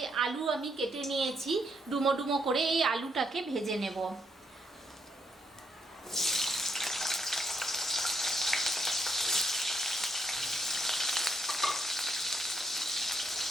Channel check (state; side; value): normal; both; correlation 0.76